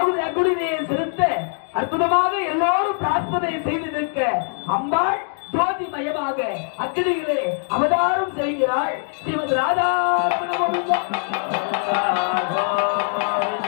அங்குடியை செலுத்த அற்புதமாக எல்லோரும் பிரார்த்தனை செய்து நிற்க அம்பாள் ஜோதிமயமாக அக்கினியிலே அவதாரம் செய்கிறாள் ஸ்ரீமத் ராதா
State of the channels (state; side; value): silent; right; 64 dB below the other